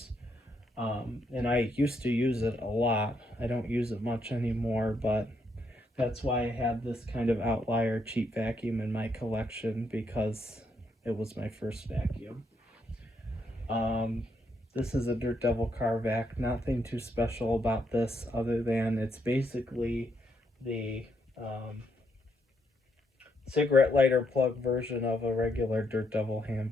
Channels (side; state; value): both; normal; correlation 0.76